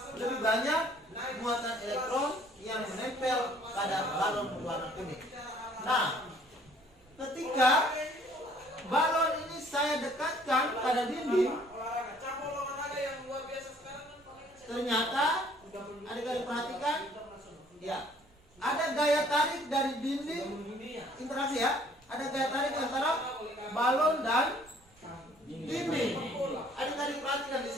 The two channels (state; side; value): normal; both; correlation 0.58